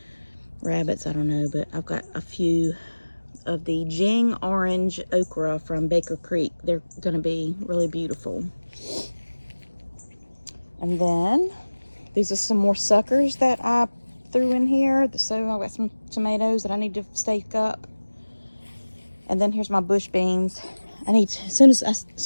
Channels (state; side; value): inverted; both; correlation -1.00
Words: rabbits, I don't know. But I've got a few of the Jing orange okra from Baker Creek. They're gonna be really beautiful. And then these are some more suckers that I threw in here. So I've got some tomatoes that I need to stake up. And then here's my bush beans. As soon